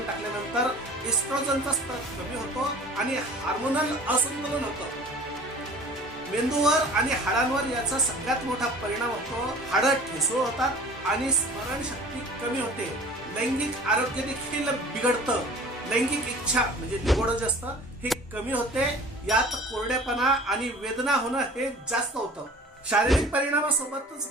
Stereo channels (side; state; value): both; normal; correlation 0.44